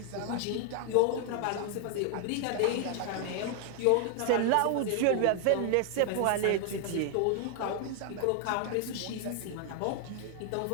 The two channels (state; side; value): different; both; correlation 0.00